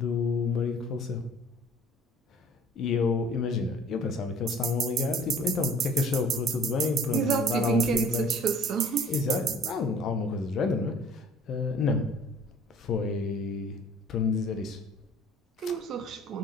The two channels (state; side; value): normal; both; correlation 0.51